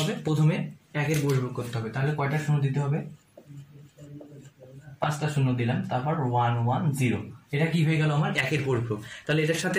প্রথমে 1 এর পরিপূরক করতে হবে। তাহলে কয়টা 0 দিতে হবে, 5টা 0 দিলাম, তারপর 1 1 0। এটা কি হয়ে গেল, আমার 1 এর পরিপূরক। তাহলে এটার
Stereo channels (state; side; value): identical; both; correlation 1.00